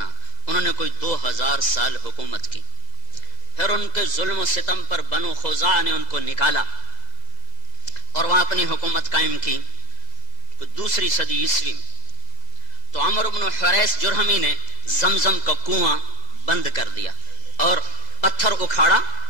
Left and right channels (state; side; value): late; right; 2.0 ms